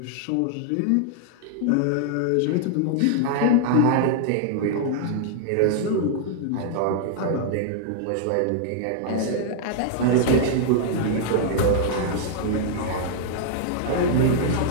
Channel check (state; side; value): different; both; correlation -0.01